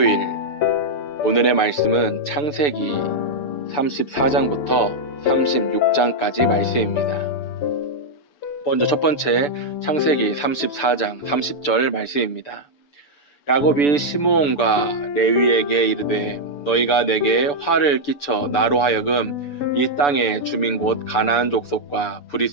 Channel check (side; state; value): right; late; 6.9 ms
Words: 오늘의 말씀은 창세기 34장부터 36장까지 말씀입니다. 먼저 첫 번째 창세기 34장 30절 말씀입니다. 야곱이 시므온과 레위에게 이르되 너희가 내게 화를 끼쳐 나로 하여금 이 땅의 주민 곧 가나안 족속과